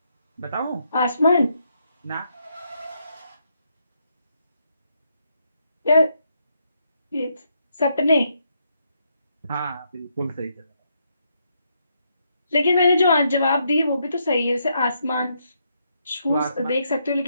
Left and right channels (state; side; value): inverted; both; correlation -0.77